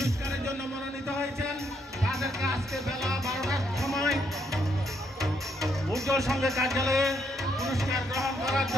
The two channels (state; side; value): normal; both; correlation 0.74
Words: জন্য মনোনীত হয়েছেন তাদেরকে আজকে বেলা 12টার সময় উজ্জ্বল সংঘের কার্যালয়ে পুরস্কার গ্রহণ করার